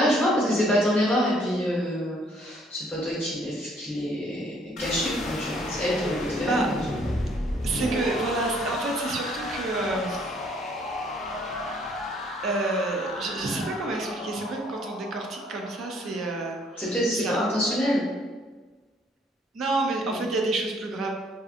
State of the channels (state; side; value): normal; both; correlation 0.63